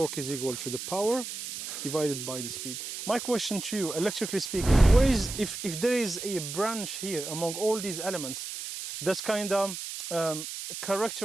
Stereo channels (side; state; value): right; noise; hiss, 7 dB below the sound